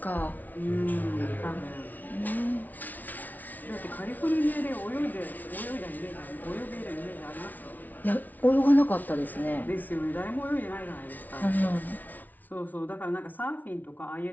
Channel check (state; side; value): late; right; 0.080 ms